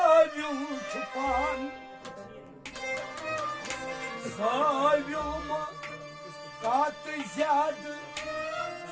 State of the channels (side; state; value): both; identical; correlation 1.00